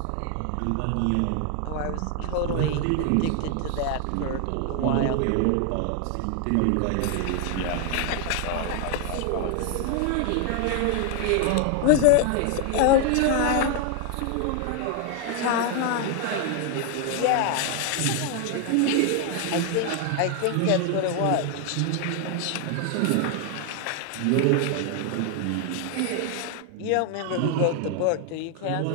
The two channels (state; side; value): different; both; correlation 0.01